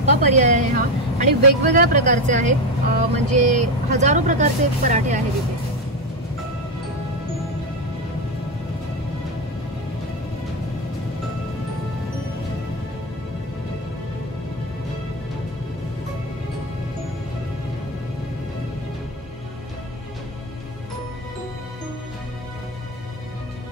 पर्याय आहे हा. आणि वेगवेगळ्या प्रकारचे आहेत, म्हणजे हजारो प्रकारचे पराठे आहेत इथे.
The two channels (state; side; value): normal; both; correlation 0.14